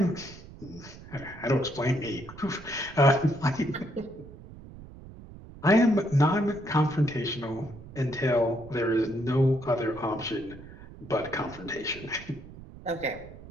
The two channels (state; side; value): noise; right; rumble, 17 dB below the sound